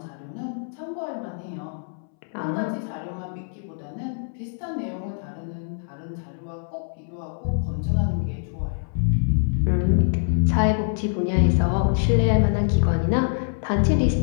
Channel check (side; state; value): right; silent; 62 dB below the other